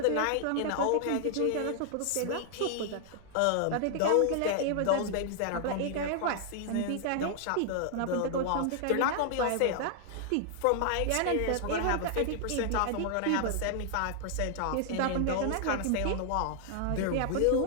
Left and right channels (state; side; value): different; both; correlation 0.00